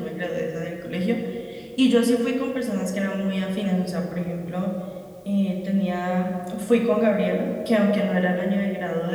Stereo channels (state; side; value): identical; both; correlation 1.00